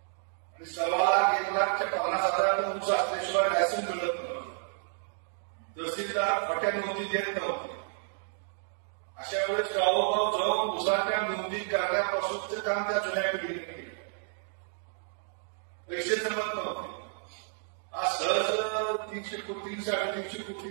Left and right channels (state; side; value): silent; left; digital silence